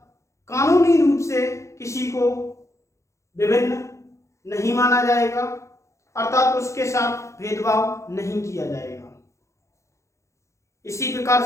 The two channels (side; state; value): right; late; 0.14 ms